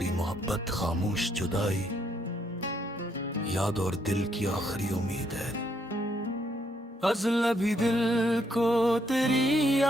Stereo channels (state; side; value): normal; both; correlation 0.73